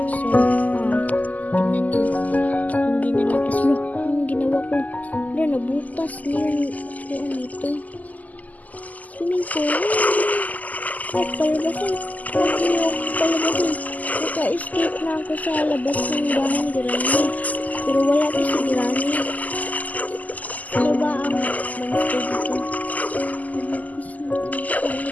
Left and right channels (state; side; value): late; right; 0.078 ms